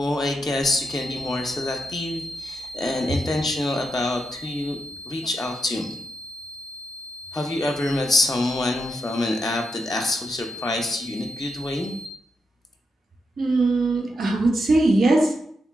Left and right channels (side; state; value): both; normal; correlation 0.84